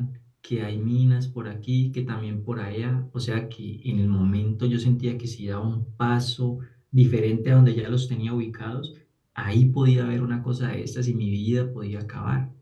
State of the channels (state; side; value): identical; both; correlation 1.00